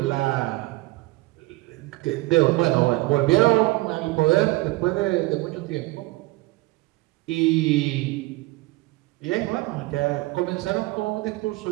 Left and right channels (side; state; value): left; quieter; 20.8 dB